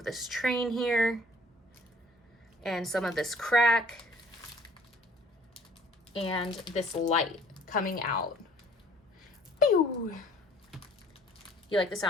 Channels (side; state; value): both; normal; correlation 0.56